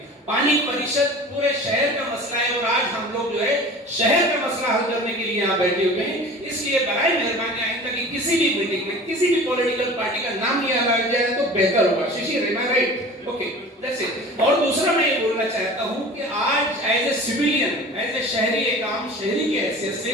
पानी परिषद पूरे शहर का मसला है और आज हम लोग जो है शहर का मसला हल करने के लिए यहाँ बैठे हुए हैं। इसलिए बराए मेहरबानी आइंदा कि किसी भी मीटिंग में किसी भी पॉलिटिकल पार्टी का नाम लिया जाए तो बेहतर होगा। Shishir, am I right? Okay, that's it. और दूसरा मैं ये बोलना चाहता हूँ कि आज as a civilian, as a शहरी, एक आम शहरी की हैसियत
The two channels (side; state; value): both; normal; correlation 0.40